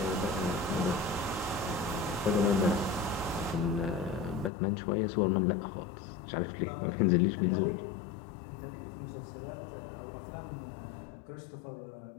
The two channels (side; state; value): right; drops out; at 4.5 s